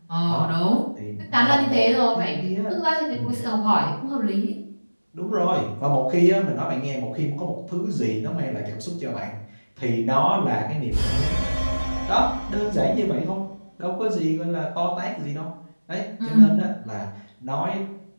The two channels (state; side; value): inverted; both; correlation -1.00